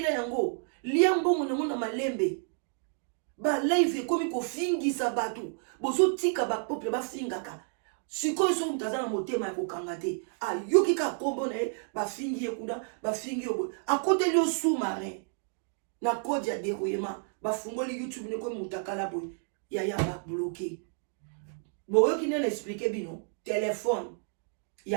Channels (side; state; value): left; silent; 57 dB below the other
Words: yango liambo na malembe ba live komi kofingisa batu bozo tika ba peuple ba fingaka sikoyo so mutaza na motema ya kokanga te ayoki ka kombo na ye bafingi ye kuna bafingi yo akoteli yo sous-marin na code ya dérouillement bafungoli YouTube ne ko mutakala boy ya ba bloqué boyoki nene expliquer bino téléphone